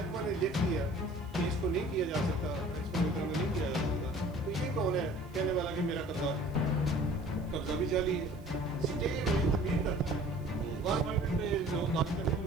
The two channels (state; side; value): noise; right; hiss, 29 dB below the sound